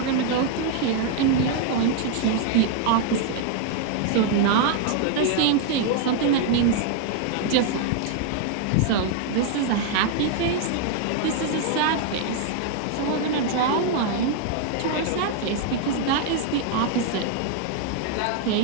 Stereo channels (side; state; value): both; different; correlation 0.00